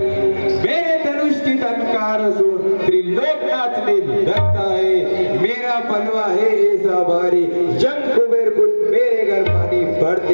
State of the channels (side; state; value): both; inverted; correlation -1.00